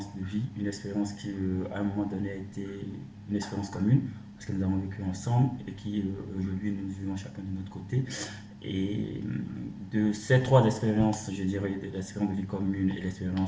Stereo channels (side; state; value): both; identical; correlation 1.00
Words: de vie, une expérience qui à un moment donné a été une expérience commune parce que nous avons vécu ensemble et qui aujourd'hui nous vivons chacun de notre côté. Et de ces trois expériences, je dirais, de l'expérience de vie commune et